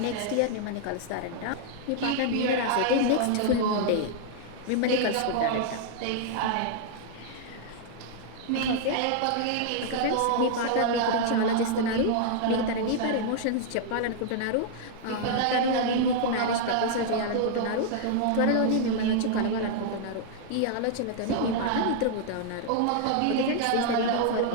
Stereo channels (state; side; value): different; both; correlation -0.01